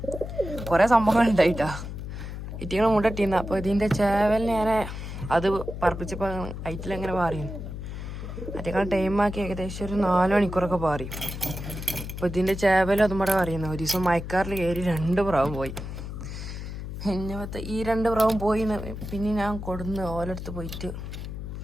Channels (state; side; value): noise; left; hum, 8 dB below the sound